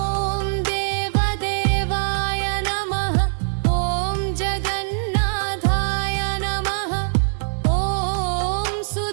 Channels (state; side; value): silent; left; digital silence